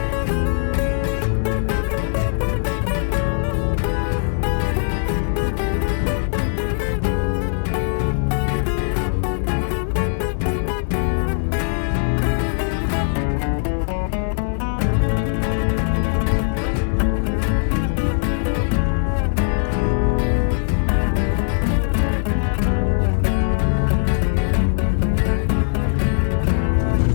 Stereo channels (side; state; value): right; silent; digital silence